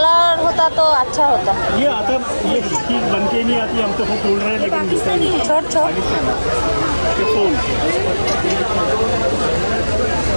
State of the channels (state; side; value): inverted; both; correlation -1.00